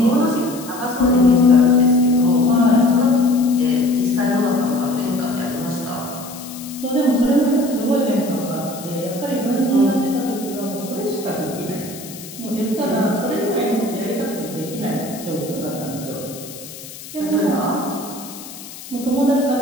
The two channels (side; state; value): left; noise; hiss, 15 dB below the sound